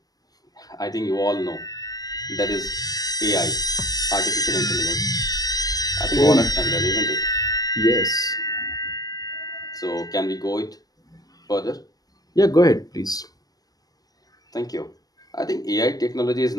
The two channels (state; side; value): late; right; 0.18 ms